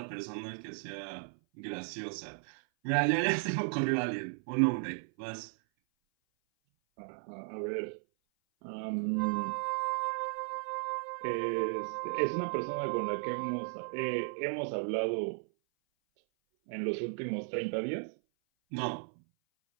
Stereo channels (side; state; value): left; silent; 54 dB below the other